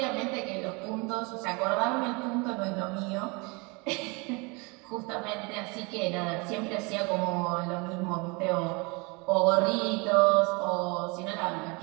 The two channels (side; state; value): left; quieter; 28.7 dB